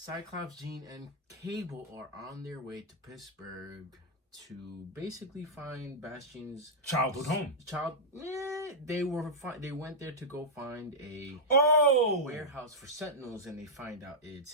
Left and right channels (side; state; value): both; normal; correlation -0.07